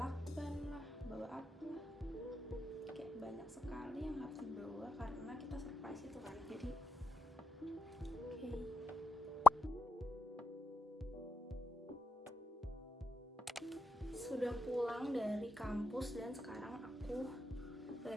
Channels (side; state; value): both; normal; correlation 0.89